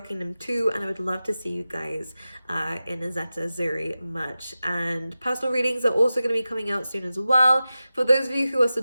them too, and I would love to see you guys in a Zeta Zuri merch. And personal readings are also going to be coming out soon as well. For those of you who are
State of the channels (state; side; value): inverted; both; correlation -0.94